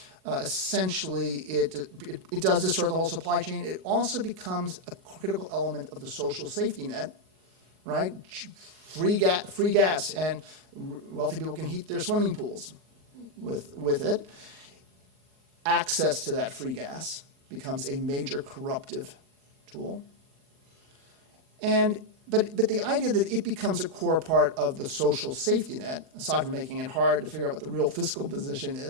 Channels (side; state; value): left; late; 38 ms